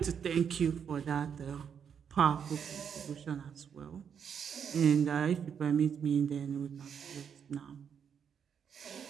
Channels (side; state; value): left; quieter; 7.5 dB